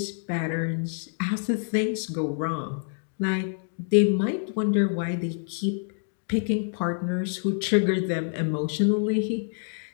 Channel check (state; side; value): silent; right; digital silence